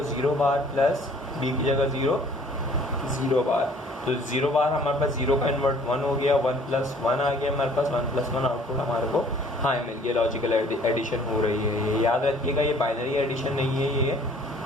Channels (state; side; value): normal; both; correlation 0.55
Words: 0 बार प्लस बी की जगह 0 0 बार, तो 0 बार हमारे पास 0 का इन्वर्ट 1 हो गया, 1 + 1 आ गया हमारे पास, 1 + 1 आउटपुट हमारे को हाई मिल गया। लॉजिकल एडिशन हो रही है। ये याद रखिएगा, ये बाइनरी एडिशन नहीं है, ये